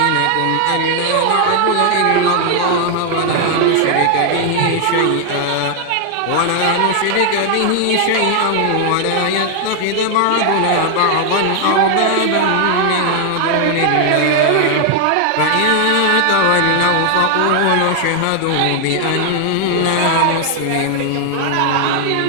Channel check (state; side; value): different; both; correlation 0.00